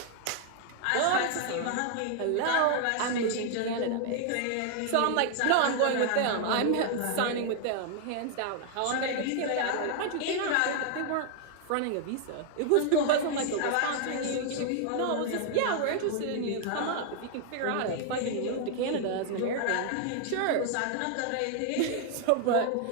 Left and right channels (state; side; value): different; both; correlation 0.00